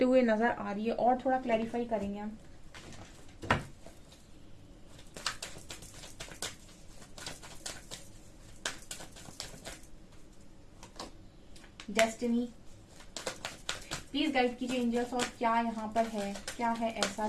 हुए नजर आ रही है। और थोड़ा क्लैरिफाई करेंगे हम। डेस्टिनी, प्लीज गाइड कीजिए एंजल्स, और क्या यहाँ पर है, क्या है ऐसा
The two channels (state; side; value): identical; both; correlation 1.00